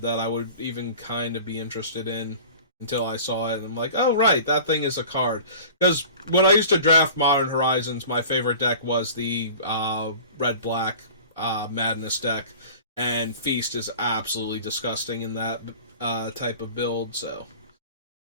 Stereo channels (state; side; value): inverted; both; correlation -0.41